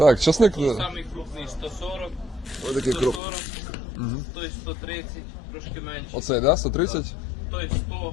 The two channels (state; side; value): drops out; right; at 3.2 s